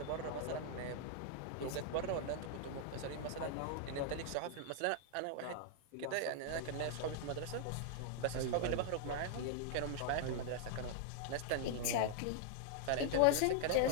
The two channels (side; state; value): both; different; correlation -0.01